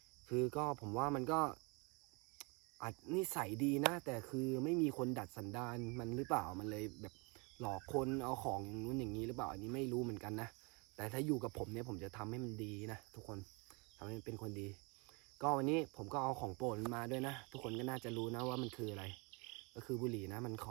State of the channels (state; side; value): quieter; left; 30.2 dB